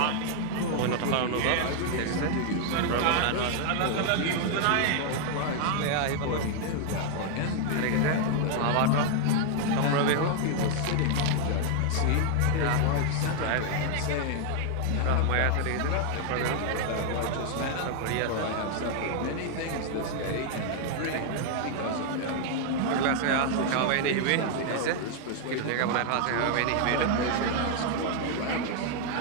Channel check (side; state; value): both; different; correlation 0.00